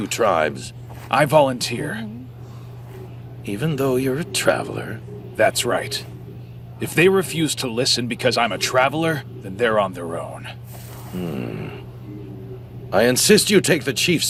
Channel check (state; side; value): identical; both; correlation 1.00